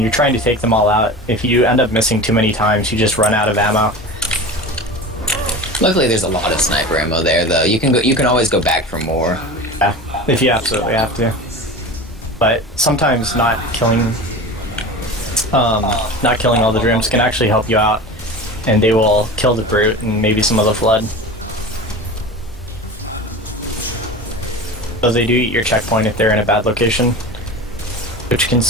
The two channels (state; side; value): normal; both; correlation 0.31